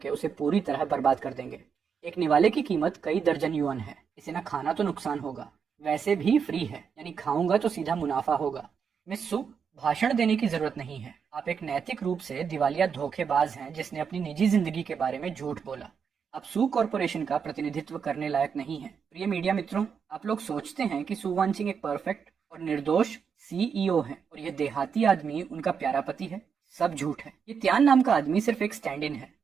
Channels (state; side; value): quieter; left; 6.6 dB